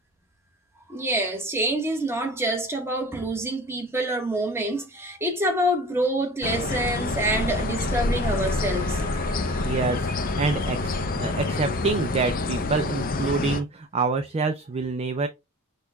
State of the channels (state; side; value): normal; both; correlation 0.41